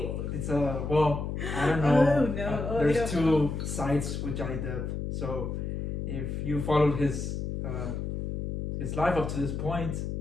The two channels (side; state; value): left; noise; hum, 3 dB below the sound